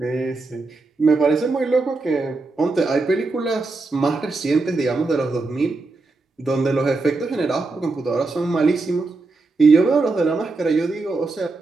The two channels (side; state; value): left; quieter; 3.6 dB